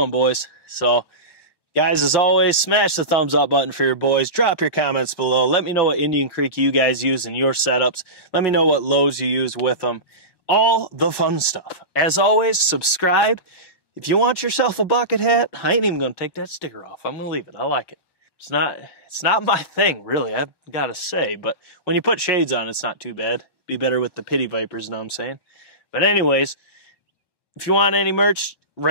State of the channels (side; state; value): left; late; 1.1 ms